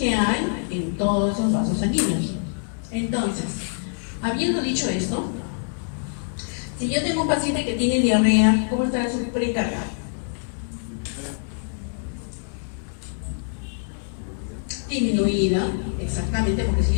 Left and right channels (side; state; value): right; silent; digital silence